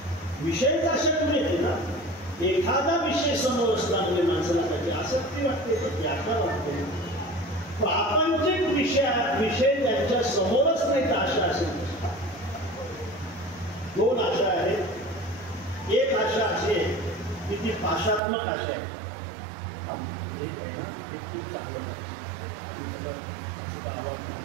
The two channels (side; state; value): left; drops out; at 18.2 s